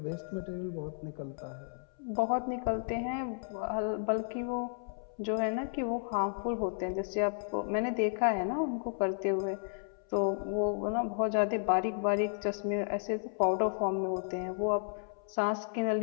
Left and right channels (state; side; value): silent; right; 56 dB below the other